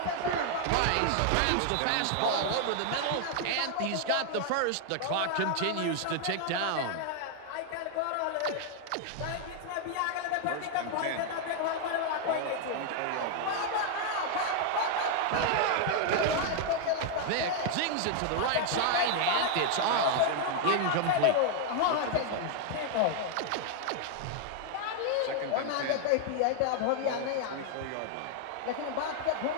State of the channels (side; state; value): both; different; correlation 0.00